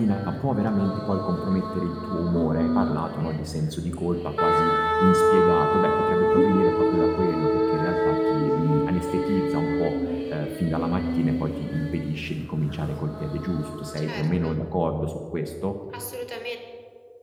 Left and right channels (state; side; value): identical; both; correlation 1.00